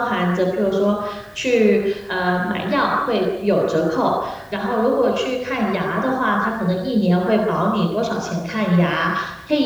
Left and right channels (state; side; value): identical; both; correlation 1.00